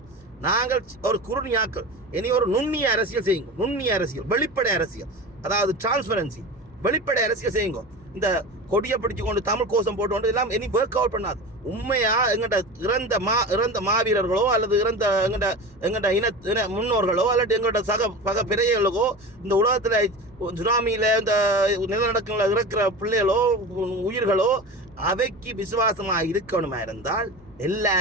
நாங்கள் ஒரு குறுநியாக்கள். இனி ஒரு நுண்ணிய அரசியல் செய்யுங்க. நுண்ணிய அரசியல், வெளிப்படை அரசியல், அதாவது டிரான்ஸ்பரன்சி, வெளிப்படை அரசியல் செய்யுங்க. இந்த கொடியை பிடிச்சு கொண்டு தமிழ் கோஷம் போட்டு கொண்டு எல்லாம் இனி ஒர்க் அவுட் பண்ணாது. உண்மையா எங்கள்கிட்ட இறந்த மாவீரர்களோ அல்லது எங்கள்கிட்ட இன முன்னோர்களோ அல்லது எங்கள்கிட்ட பக பிறைகளுக்கோ இந்த உலகத்தில் சுனாமியில் இந்த நிலநடுக்கங்களில் இருக்கிற பிள்ளைகளோ உயிர்களோ அவைக்கு விசுவாசமாக இருக்கணுமா இருந்தால்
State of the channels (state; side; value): normal; both; correlation 0.30